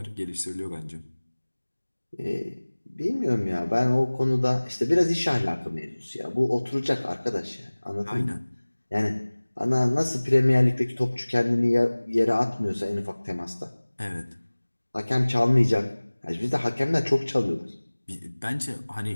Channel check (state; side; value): inverted; both; correlation -1.00